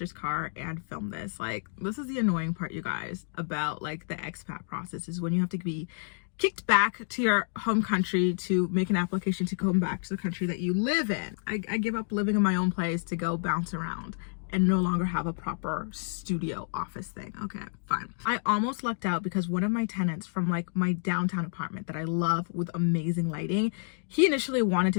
car and film this. This is the annoying part, you guys, about the expat process, is when you have to be kicked back to your home country to make an application to come back to the country that you live in. I give up living in my own place to go bounce around and no longer have a proper studio office thing. Okay, fine. I almost lucked out because one of my tenants from my downtown apartment that I love with amazing lighting, he initially wanted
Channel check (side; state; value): right; silent; digital silence